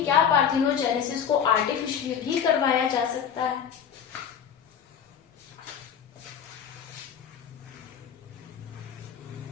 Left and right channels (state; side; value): quieter; right; 8.1 dB